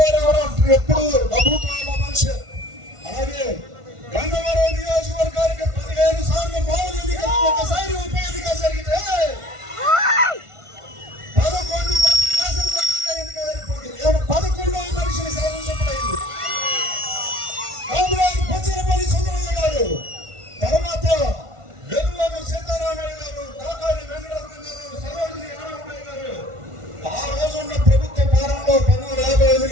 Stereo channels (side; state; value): left; late; 1.5 ms